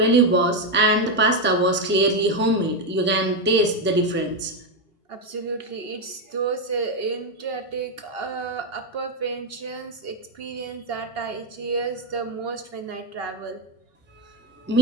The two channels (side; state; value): both; normal; correlation 0.06